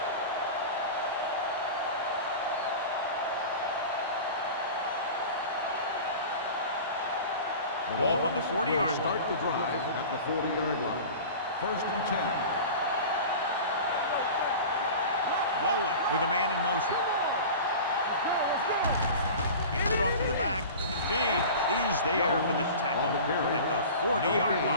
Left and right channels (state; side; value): inverted; both; correlation -0.35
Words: Ball on the 40-yard line. Start the drive at the 40-yard line. 1st and 10. Volek with a man in motion. Handed off to the back. James is there for the tackle at the 40-yard